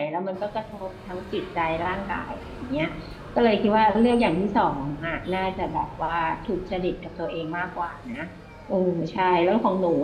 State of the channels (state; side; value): identical; both; correlation 1.00